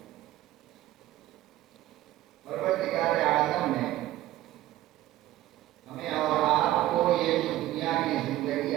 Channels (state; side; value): quieter; left; 14.9 dB